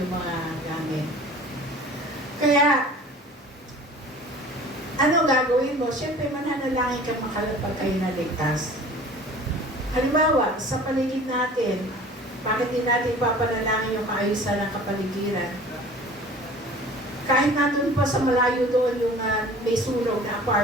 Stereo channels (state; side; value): normal; both; correlation 0.45